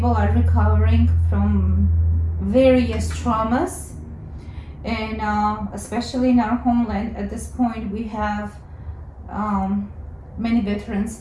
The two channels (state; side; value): identical; both; correlation 1.00